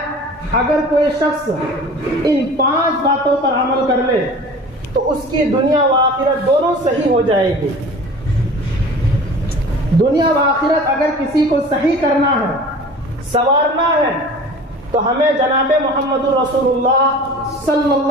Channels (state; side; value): normal; both; correlation 0.41